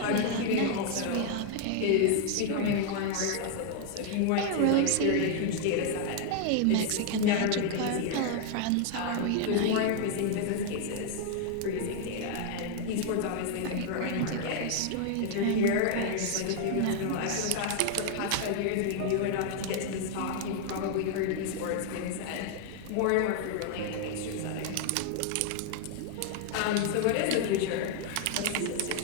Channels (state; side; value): different; both; correlation 0.00